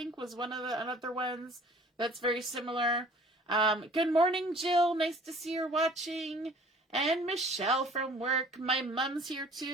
was one of the other ones that's very similar. Good morning, Jill. Nice to see you're watching. And Michelle from work. My mom's here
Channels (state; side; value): normal; both; correlation 0.51